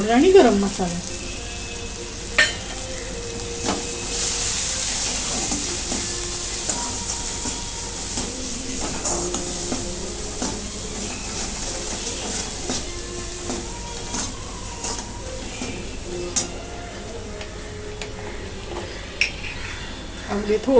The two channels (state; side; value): identical; both; correlation 1.00